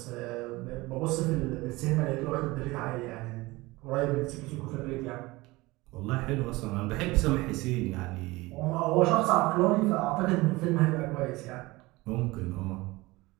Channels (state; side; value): quieter; left; 21.3 dB